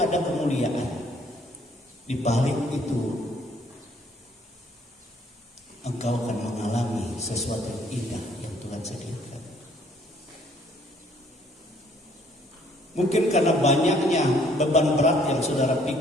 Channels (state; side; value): normal; both; correlation 0.62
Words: kemuliaan. Di balik itu engkau akan mengalami sesuatu yang indah yang Tuhan sediakan. Mungkin karena banyaknya beban berat yang saudara